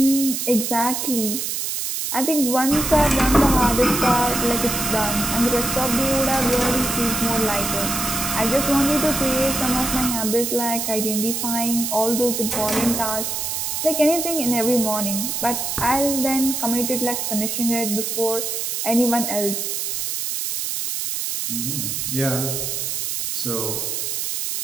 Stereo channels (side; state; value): right; noise; hiss, 2 dB below the sound